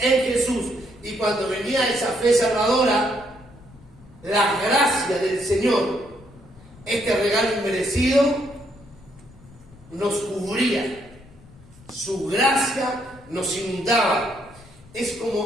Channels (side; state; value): left; noise; rumble, 23 dB below the sound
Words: Jesús. Y cuando venía esa fe salvadora, la gracia del Señor, este regalo inmerecido, nos cubría. Su gracia nos inundaba. Es